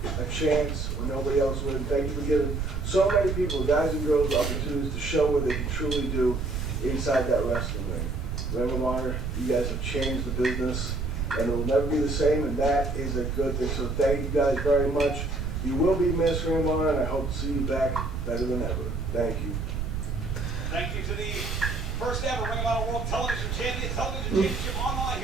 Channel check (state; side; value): noise; right; rumble, 3 dB below the sound